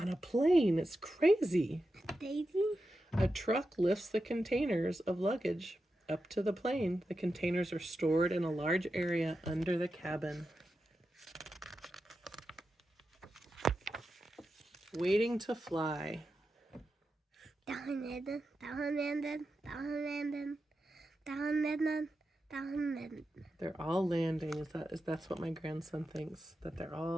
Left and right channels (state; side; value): normal; both; correlation 0.90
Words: a plane, it's crazy. Daisy? A truck lifts the containers of luggage up to the plane. The containers are stored in a large area under the cabin. Waiting to fly. Down landing. They're all landing. That's what my grandson thinks, that they're